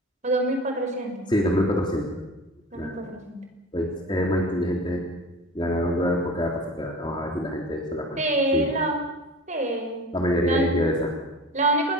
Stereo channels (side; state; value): both; normal; correlation 0.37